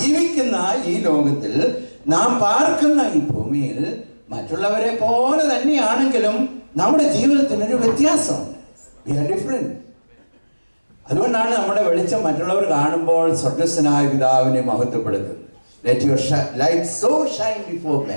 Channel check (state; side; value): inverted; both; correlation -1.00